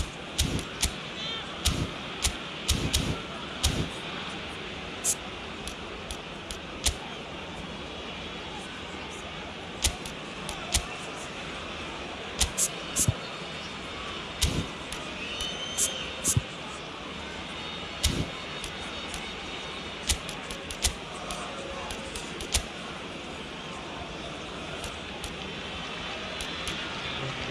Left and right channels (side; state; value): both; identical; correlation 1.00